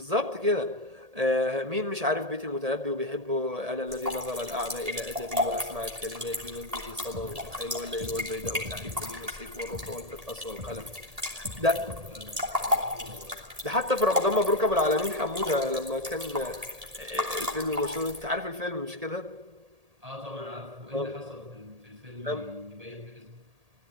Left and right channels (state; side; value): late; left; 1.8 ms